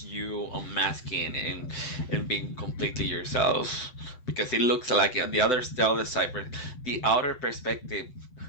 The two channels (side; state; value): right; late; 7.9 ms